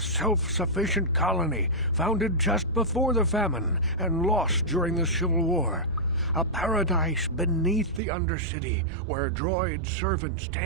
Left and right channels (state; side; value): drops out; left; at 8.0 s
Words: colony founded just before the famine and lost during the Civil War. A paradise beneath the Undercity where droid servants